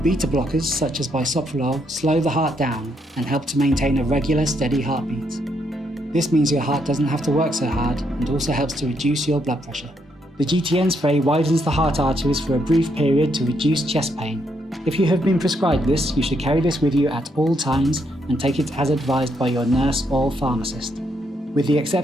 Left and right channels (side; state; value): both; normal; correlation 0.76